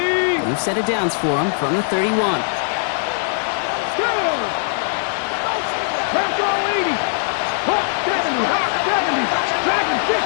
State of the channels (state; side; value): silent; right; 66 dB below the other